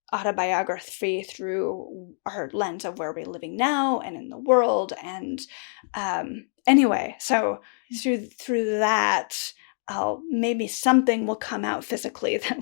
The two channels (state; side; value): silent; right; digital silence